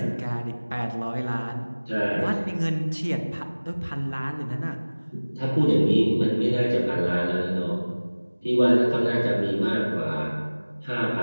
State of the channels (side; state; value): both; inverted; correlation -1.00